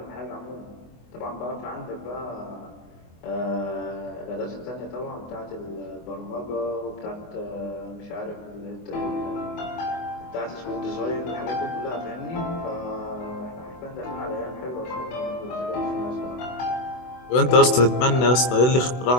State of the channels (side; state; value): right; late; 24 ms